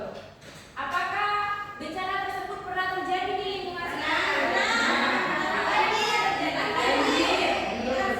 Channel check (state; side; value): identical; both; correlation 1.00